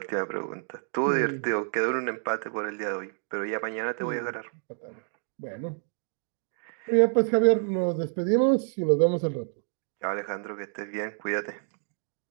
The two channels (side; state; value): left; silent; digital silence